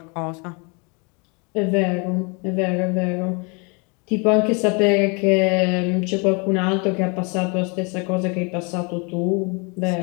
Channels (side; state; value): right; quieter; 32.5 dB